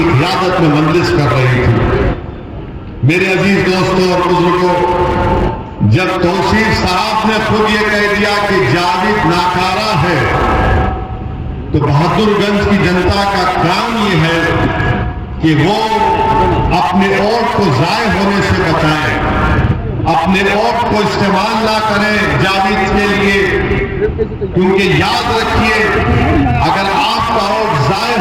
क़ियादत में मंजिश कर रही थी। मेरे अजीज दोस्तों और बुजुर्गों, जब तौसीफ साहब ने खुद ये कह दिया कि जावेद नाकारा है, तो बहादुरगंज की जनता का काम ये है कि वो अपने वोट को जाय होने से बचाएं, अपने वोट को इस्तेमाल ना करें जावेद के लिए, क्योंकि याद रखिए अगर आपका वोट जाय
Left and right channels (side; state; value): both; identical; correlation 1.00